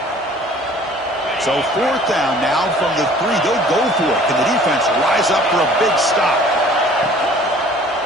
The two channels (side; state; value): both; normal; correlation 0.51